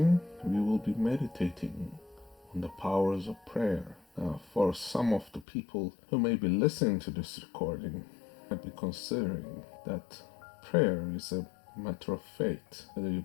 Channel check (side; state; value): right; drops out; at 5.5 s